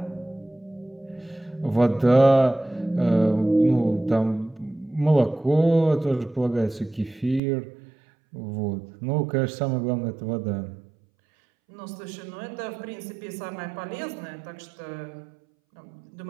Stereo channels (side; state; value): left; drops out; at 7.4 s